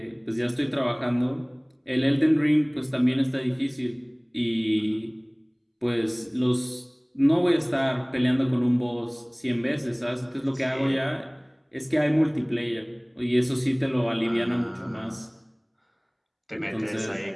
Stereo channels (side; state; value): both; identical; correlation 1.00